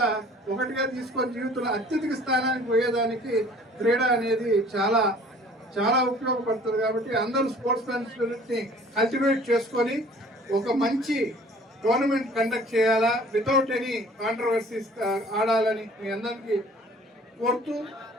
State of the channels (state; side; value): normal; both; correlation 0.51